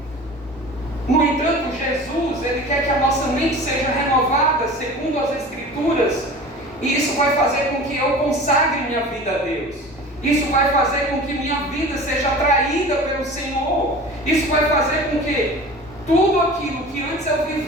No entanto, Jesus, ele quer que a nossa mente seja renovada segundo as Escrituras, e isso vai fazer com que eu consagre minha vida a Deus. Isso vai fazer com que minha vida seja atraída pelo Senhor. Isso vai fazer com que tudo aquilo que antes eu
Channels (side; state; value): both; normal; correlation 0.38